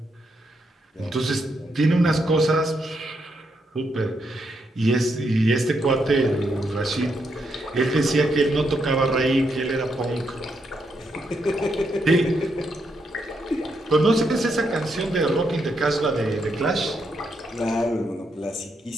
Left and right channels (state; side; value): normal; both; correlation 0.79